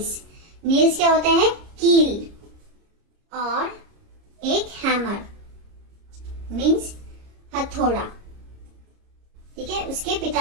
नेल्स क्या होता है? कील, और एक हैमर मीन्स हथौड़ा। ठीक है, उसके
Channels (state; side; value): late; left; 30 ms